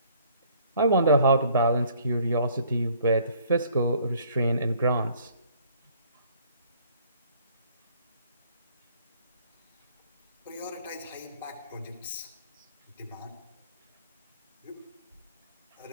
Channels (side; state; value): both; inverted; correlation -0.59